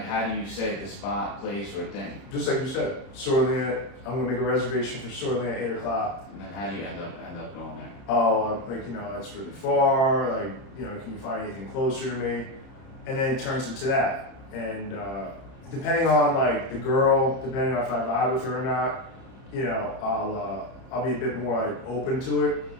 how do you say the spot, place, or thing? Just like you said, Sorlina, I'm gonna make a reservation for Sorlina at 8 o'clock. And then how do you end up going there? Oh, like, you know, that's really far, like, you know, can you find anything closer to me? And then it turns into that. And depending on like the girl, depending on if I vibe with her or not, you know, I'll be a bit more like open to it.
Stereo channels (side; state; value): right; late; 30 ms